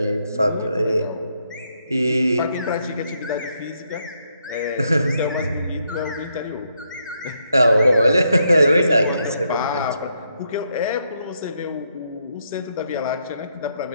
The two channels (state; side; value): inverted; both; correlation -0.78